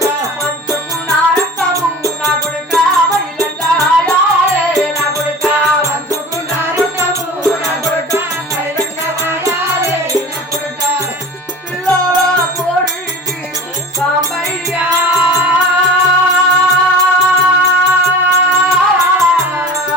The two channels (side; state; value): both; normal; correlation 0.38